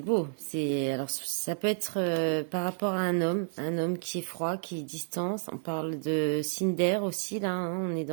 beau. Alors ça peut être par rapport à un homme qui est froid, qui est distance. On parle de Cinder aussi là. Hein, on est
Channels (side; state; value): left; silent; 57 dB below the other